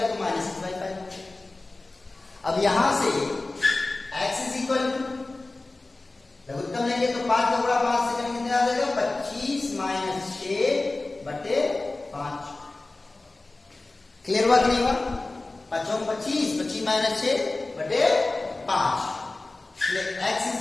तो माइनस 6/5। अब यहां से x इज इक्वल टू लघुत्तम लेंगे तो 5 का गुणा 5 से करेंगे, कितना आ जाएगा 25 माइनस 6/5। क्लियर हुआ कि नहीं हुआ, 5 25, 25 minus 6/5। x is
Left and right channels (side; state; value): right; quieter; 3.1 dB